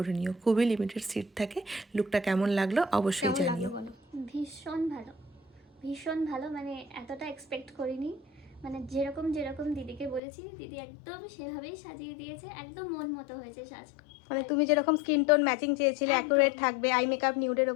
নিও। খুবই লিমিটেড সিট থাকে। লুকটা কেমন লাগলো অবশ্যই জানিও। ভীষণ ভালো, ভীষণ ভালো, মানে এতটা এক্সপেক্ট করিনি। মানে যেরকম যেরকম দিদিকে বলেছি, দিদি একদম সেভাবেই সাজিয়ে দিয়েছে, একদম মন মতো হয়েছে সাজ। মানে তুমি যেরকম স্কিন টোন ম্যাচিং চেয়েছিলে, অ্যাকুরেট থাকবে, আই মেকআপ নিউডের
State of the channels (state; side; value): drops out; right; at 10.2 s